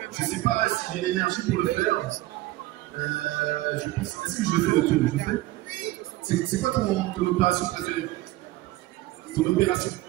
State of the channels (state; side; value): quieter; left; 17.6 dB